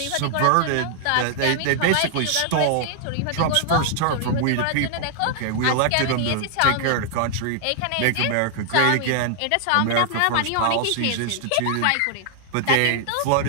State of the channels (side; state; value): both; different; correlation -0.01